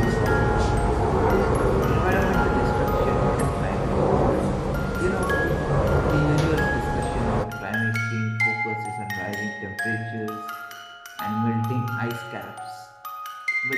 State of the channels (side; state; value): both; identical; correlation 1.00